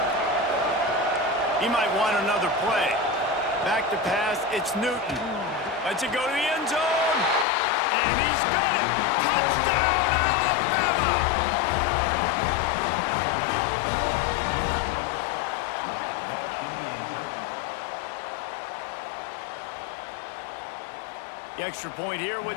He might want another play. Back to pass, it's Newton. Lets it go to the end zone. And he's got it. Touchdown, Alabama! The extra point here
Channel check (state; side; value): drops out; right; at 7.5 s